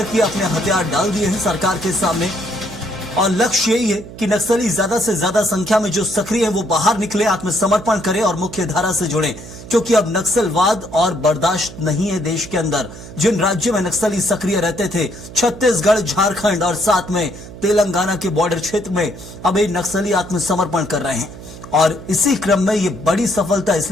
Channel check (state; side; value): noise; right; hum, 15 dB below the sound